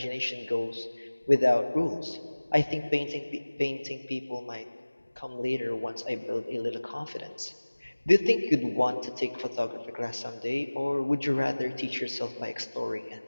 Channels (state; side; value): inverted; both; correlation -1.00